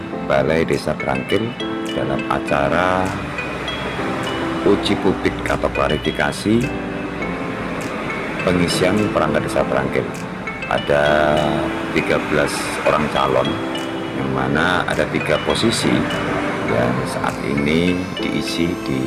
Balai Desa Brangkil dalam acara uji publik atau klarifikasi pengisian perangkat desa Brangkil. Ada 13 orang calon, yang mana ada 3 posisi yang saat ini diisi di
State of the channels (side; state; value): both; identical; correlation 1.00